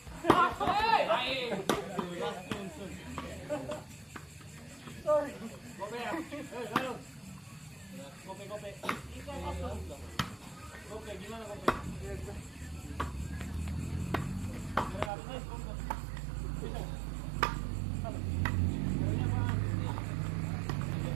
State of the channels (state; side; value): drops out; left; at 15.1 s